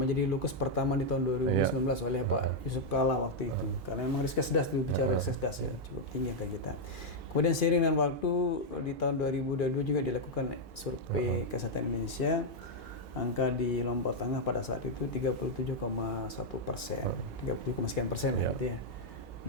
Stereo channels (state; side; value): normal; both; correlation -0.02